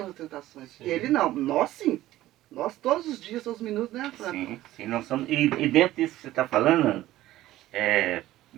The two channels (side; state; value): left; quieter; 15.3 dB